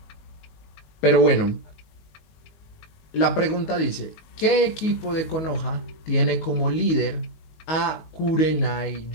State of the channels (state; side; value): late; right; 19 ms